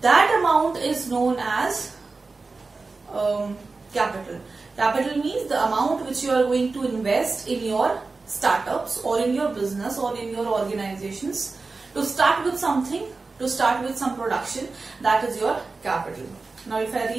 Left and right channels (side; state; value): left; quieter; 3.9 dB